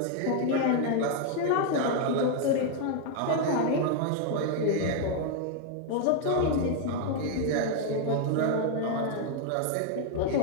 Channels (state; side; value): different; both; correlation 0.00